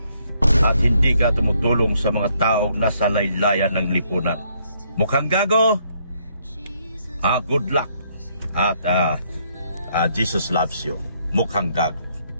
at hindi ka tumutulong sa mga taong nasa laylayan ng lipunan. Mukhang Gago, good luck at Jesus loves you, Mukhang Gago.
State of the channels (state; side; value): inverted; both; correlation -0.71